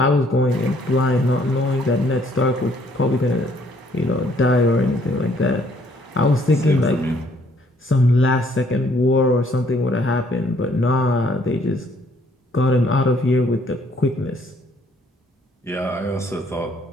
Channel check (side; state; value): both; normal; correlation 0.65